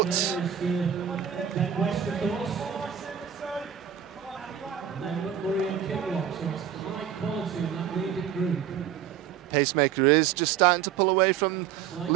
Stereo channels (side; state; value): left; quieter; 9.3 dB